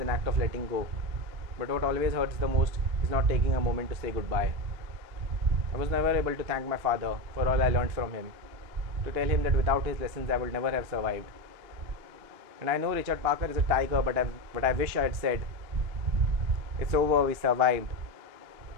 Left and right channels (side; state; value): left; late; 2.9 ms